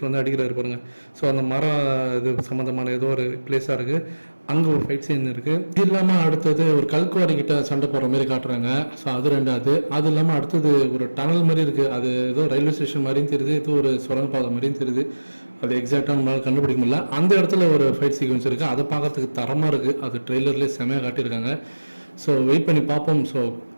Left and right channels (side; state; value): both; inverted; correlation -1.00